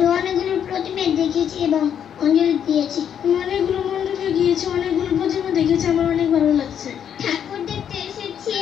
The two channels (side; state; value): right; quieter; 8.8 dB